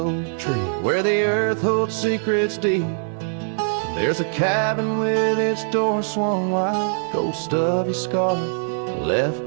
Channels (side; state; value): left; silent; 57 dB below the other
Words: tree, where the earth holds secrets deep, there's a cabin with its door swung wide, ghost of your scarf left